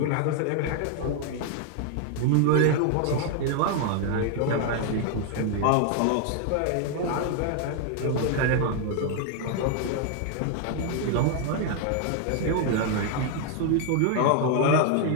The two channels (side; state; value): both; different; correlation 0.00